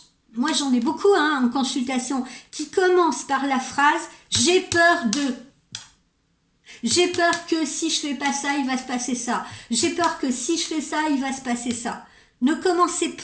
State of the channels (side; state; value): both; identical; correlation 1.00